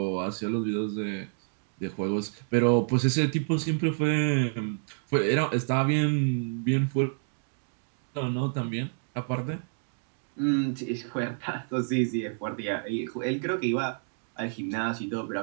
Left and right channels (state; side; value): silent; left; digital silence